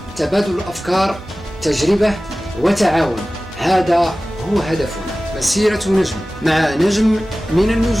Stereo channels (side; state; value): both; normal; correlation 0.97